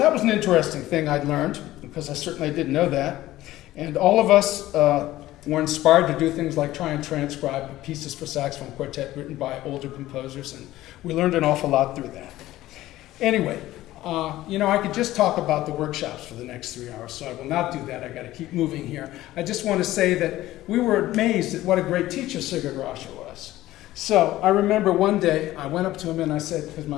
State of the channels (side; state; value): right; quieter; 15.6 dB